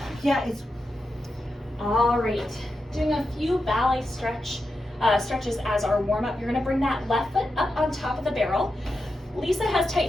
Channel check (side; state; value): both; normal; correlation 0.88